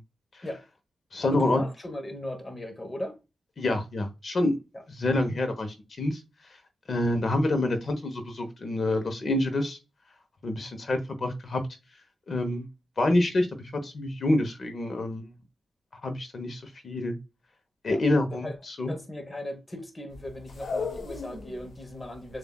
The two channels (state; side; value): normal; both; correlation 0.88